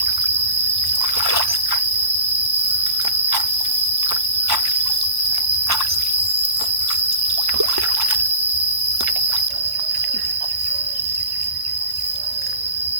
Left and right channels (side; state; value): left; late; 1.1 ms